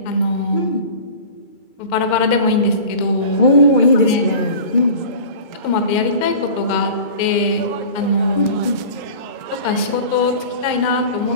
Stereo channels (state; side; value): late; right; 2.3 ms